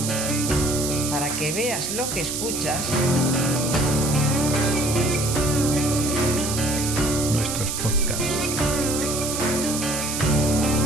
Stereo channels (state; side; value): noise; right; hiss, 3 dB below the sound